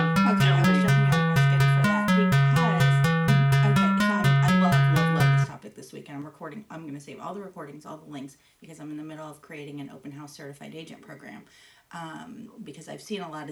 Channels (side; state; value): both; identical; correlation 1.00